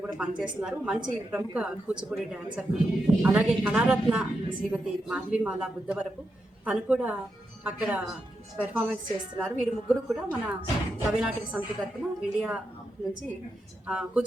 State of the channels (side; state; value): both; normal; correlation 0.86